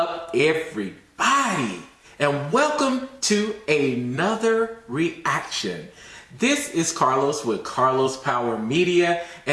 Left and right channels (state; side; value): identical; both; correlation 1.00